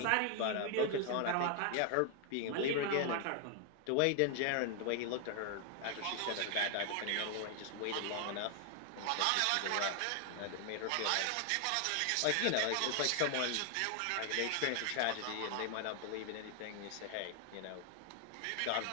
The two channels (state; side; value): different; both; correlation 0.00